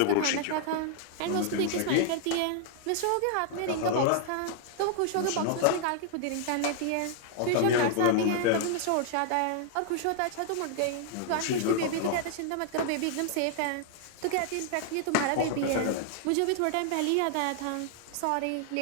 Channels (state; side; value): different; both; correlation 0.00